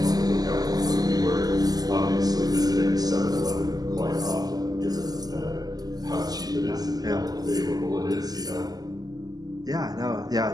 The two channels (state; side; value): late; left; 0.18 ms